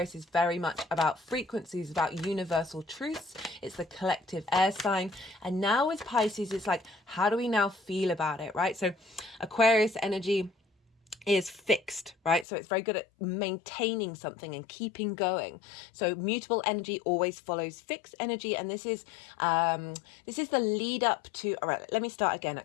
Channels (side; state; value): right; drops out; at 12.5 s